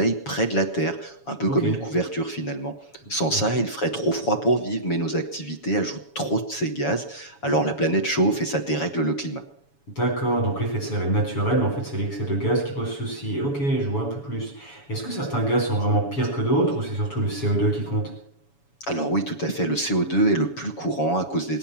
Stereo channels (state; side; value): late; right; 7.1 ms